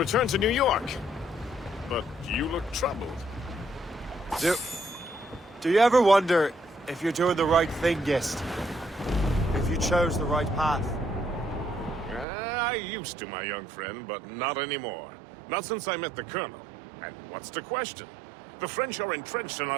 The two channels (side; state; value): left; drops out; at 12.2 s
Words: to New York. But you look troubled. Do you ever wonder if you're doing the right thing, Gist? If you chose the right path? I used to, my young friend, but not anymore. Not since I met the Colonel. And what's the question? The French are entrenched in